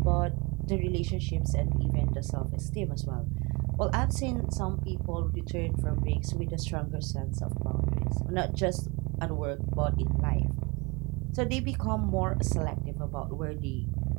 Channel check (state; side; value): quieter; left; 26.9 dB